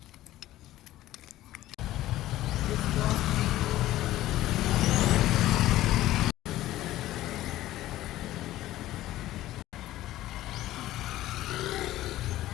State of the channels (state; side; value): quieter; right; 15.1 dB